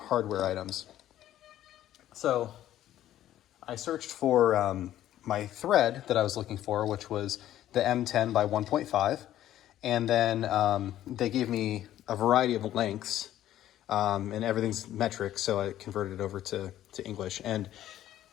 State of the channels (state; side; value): quieter; right; 12.7 dB